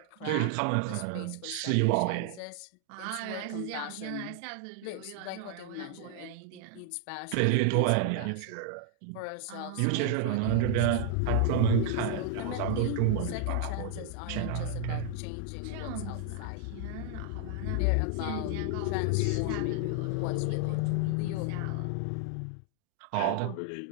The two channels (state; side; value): different; both; correlation 0.00